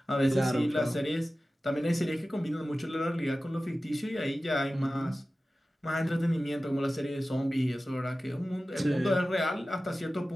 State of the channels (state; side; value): normal; both; correlation 0.95